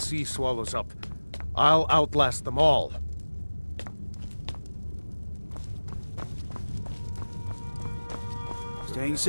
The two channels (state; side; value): inverted; both; correlation -1.00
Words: swallows up. I'll outlast them all. Staying